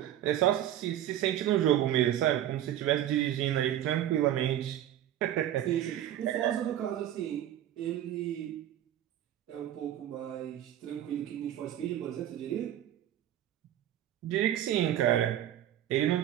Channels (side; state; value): left; quieter; 11.8 dB